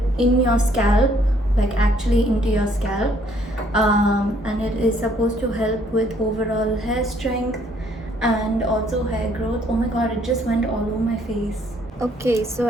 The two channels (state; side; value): normal; both; correlation 0.65